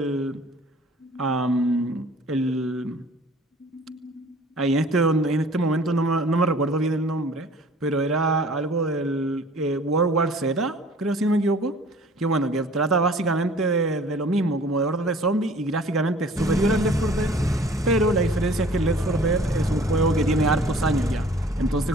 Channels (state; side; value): normal; both; correlation 0.50